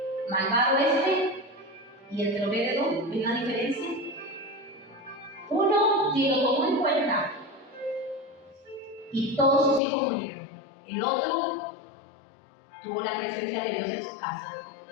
malvado y entre Obed-Edom? ¿Ven la diferencia? Uno ni lo tomó en cuenta y todos sus hijos murieron. El otro tuvo la presencia de Dios en su casa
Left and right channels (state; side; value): drops out; right; at 9.8 s